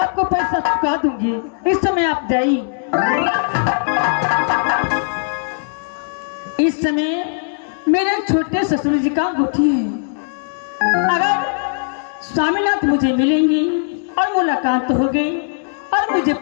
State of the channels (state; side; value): silent; right; digital silence